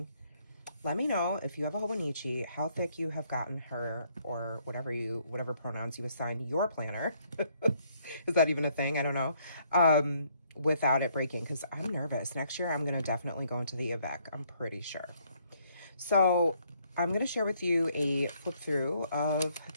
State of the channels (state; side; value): inverted; both; correlation -0.68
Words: Let me know if you have a Hobonichi, how thick you have gotten her, or whatever pronouns you assign your planner. Is that even a thing? I don't know. Without it breaking, because I'm nervous. Next year, I'm going to definitely go into the Avec. I'm pretty sure. So I'm going to share with you a flip through of,